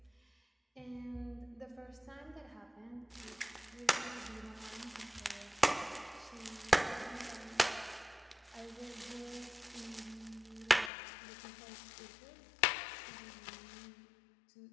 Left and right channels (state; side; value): drops out; right; at 10.9 s